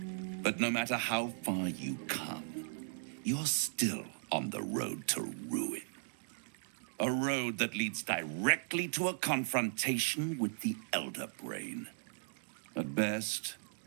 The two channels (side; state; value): left; silent; digital silence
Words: But no matter how far you come, you're still on the road to ruin. A road that leads directly to a confrontation with the Elder Brain. At best,